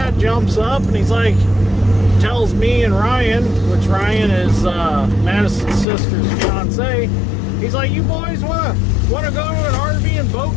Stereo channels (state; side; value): drops out; right; at 5.9 s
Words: jumps up and he's like, tells me and Ryan, which Ryan is Madison's sister's fiance, he's like, you boys want to go to an RV and